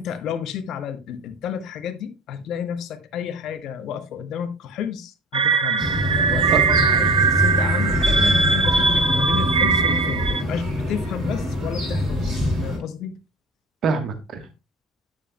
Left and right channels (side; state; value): both; normal; correlation 0.35